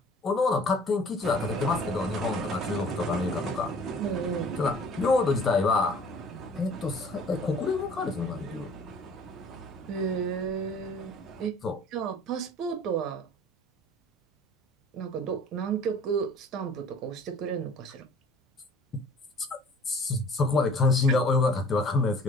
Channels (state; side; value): normal; both; correlation 0.50